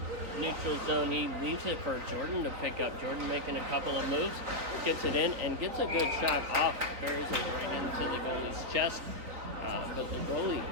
neutral zone. He leaves it for Jordan to pick up. Jordan making a couple of moves, gets it in, and gets a good shot off. Buries it right into the goalie's chest. But the goalie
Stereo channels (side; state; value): left; late; 4.1 ms